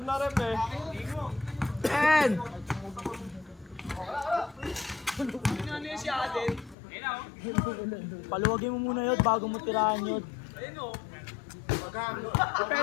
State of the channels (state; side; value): drops out; right; at 6.8 s